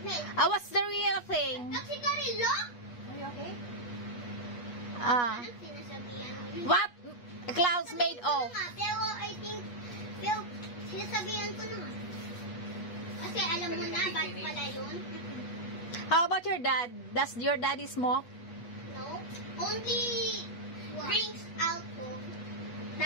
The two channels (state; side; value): late; right; 8.3 ms